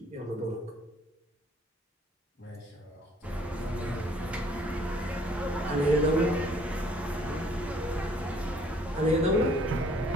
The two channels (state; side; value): normal; both; correlation 0.60